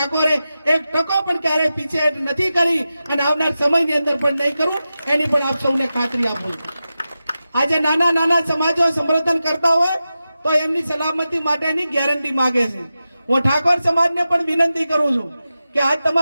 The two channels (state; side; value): inverted; both; correlation -0.92